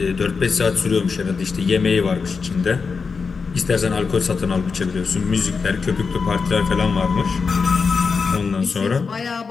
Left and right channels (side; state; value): right; quieter; 5.1 dB